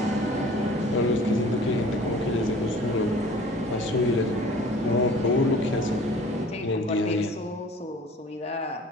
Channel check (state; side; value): normal; both; correlation 0.47